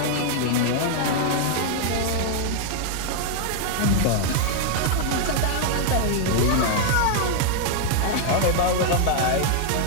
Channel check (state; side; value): different; both; correlation 0.00